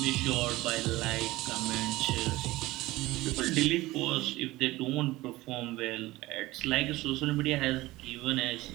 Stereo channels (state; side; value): quieter; left; 18.7 dB